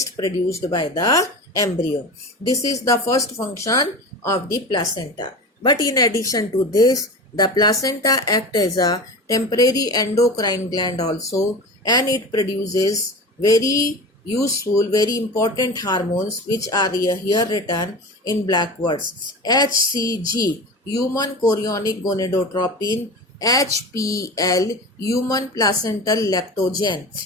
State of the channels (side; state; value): both; normal; correlation 0.31